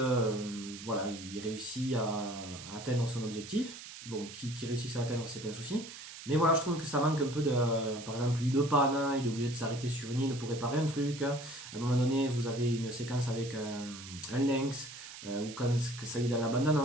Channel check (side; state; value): right; noise; hiss, 13 dB below the sound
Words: voilà, il réussit à atteindre son objectif. Bon, qui réussisse à atteindre, c'est pas un souci. Mais voilà, je trouve que ça manque un peu de. Par exemple, une panne, hein, il est obligé de s'arrêter sur une île pour réparer un truc. À un moment donné, vous avez une séquence avec un lynx, ou quand ça y est dans la